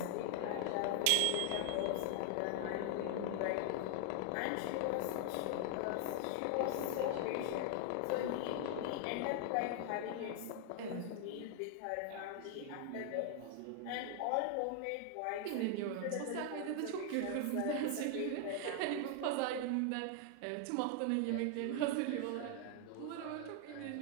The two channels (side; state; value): both; different; correlation 0.00